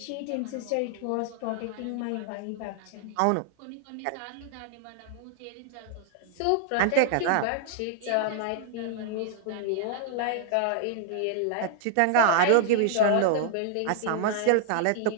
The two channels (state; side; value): different; both; correlation -0.01